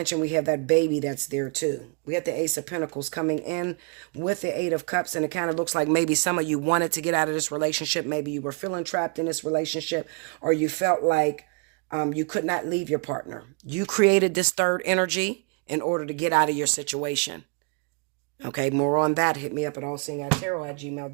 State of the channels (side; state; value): left; quieter; 35.1 dB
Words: we have that baby that's there too. We have the Ace of Pentacles coming in with the Eight of Cups. And it kind of looks like maybe some of you wanted to get out of this relationship. Maybe you were feeling trapped in this relationship or you felt like you could not leave your partner. You created this third energy in order to get out of your situation. Okay. More on that. Hit me up at